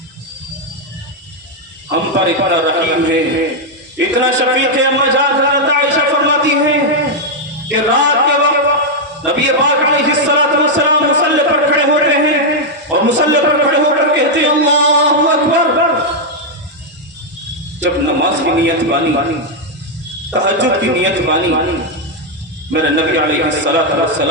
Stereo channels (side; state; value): both; normal; correlation -0.01